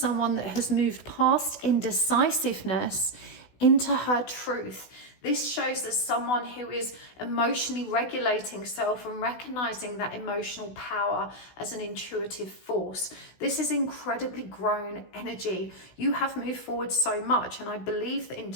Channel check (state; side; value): late; right; 16 ms